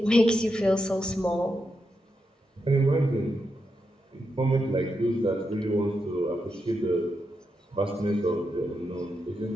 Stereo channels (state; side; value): normal; both; correlation 0.85